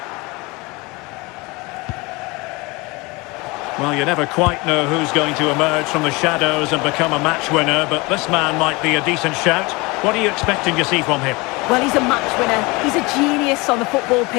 Well, you never quite know who's going to emerge from the shadows and become a match winner, but this man might be a decent shout. What are you expecting to see from him? Well, he's a match winner. He's a genius on the football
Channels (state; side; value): quieter; right; 24.9 dB